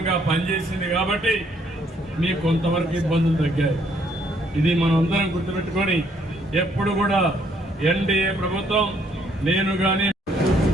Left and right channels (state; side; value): normal; both; correlation 0.68